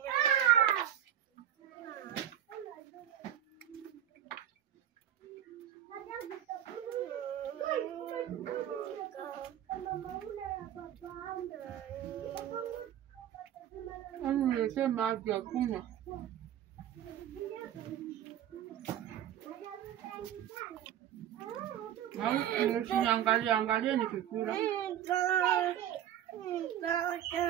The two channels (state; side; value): quieter; left; 10.8 dB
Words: Nilisema maji ya kunywa. Angalia nikikula.